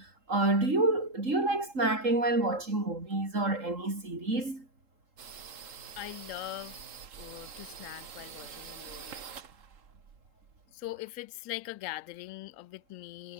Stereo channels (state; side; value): late; left; 3.8 ms